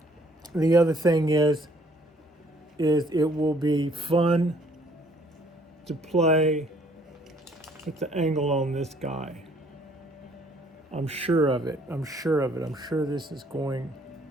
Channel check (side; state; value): both; normal; correlation 0.62